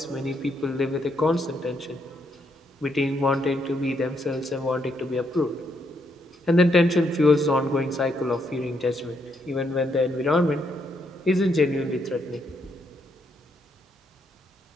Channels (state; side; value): normal; both; correlation 0.76